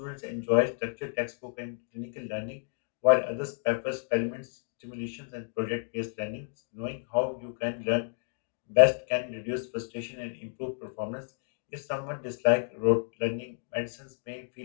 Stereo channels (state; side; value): silent; right; digital silence